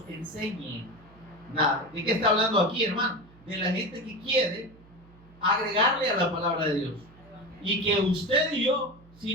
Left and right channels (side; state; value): right; noise; hum, 25 dB below the sound